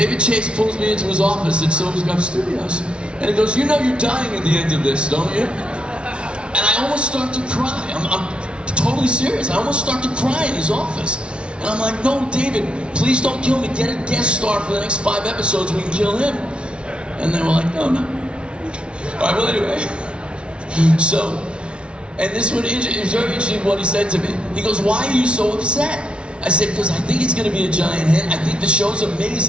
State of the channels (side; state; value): left; late; 0.058 ms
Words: Chase pulls me into his office at SopranosCon Studios, and he goes, "You know you're dying at the end of this, don't you?" And I almost start to cry. I'm totally serious. I almost start to cry in his office. And I'm like, "No, David, please don't kill me. Get a guest star for the next 5 episodes. We can kill him." And they were like, "No, no." All right, well, anyway. So, and this one, it was very interesting what he said to me. He goes, "Why are you so upset?" I said, "Because I think it's going to be a giant hit. I think the show's